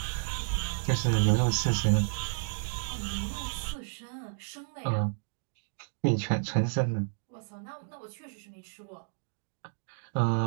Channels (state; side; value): silent; left; digital silence